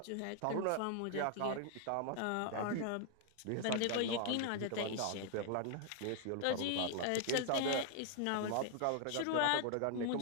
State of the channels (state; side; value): different; both; correlation 0.00